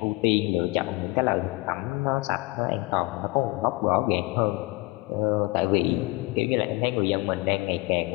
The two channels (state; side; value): quieter; right; 23.5 dB